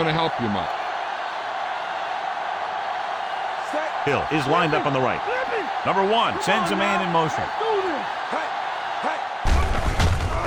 to help you much. Hill is lined up on the right. Number 1 sends a man in motion.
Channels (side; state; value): both; identical; correlation 1.00